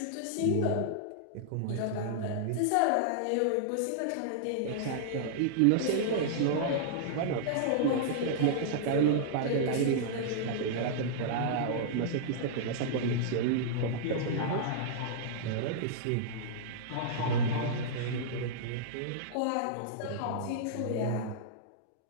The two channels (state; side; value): different; both; correlation -0.02